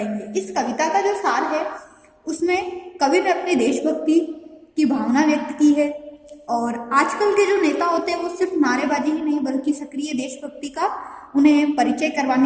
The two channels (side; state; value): both; identical; correlation 1.00